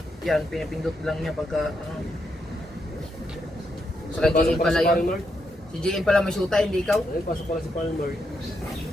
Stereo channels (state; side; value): normal; both; correlation 0.81